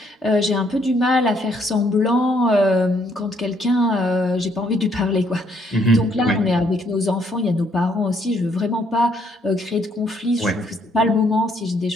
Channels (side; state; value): both; normal; correlation 0.69